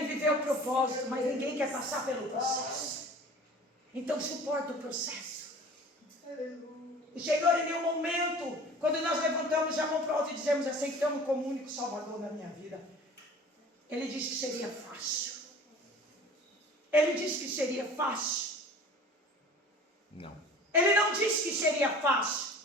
viver o propósito, mas ninguém quer passar pelo processo. Então suporta o processo. O Senhor, em nenhum momento, quando nós levantamos a mão para o alto e dizemos: aceitamos como único Salvador na minha vida, Ele disse que seria fácil. Ele disse que seria fácil. Não. Ele não disse que seria fácil.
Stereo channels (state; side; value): normal; both; correlation 0.44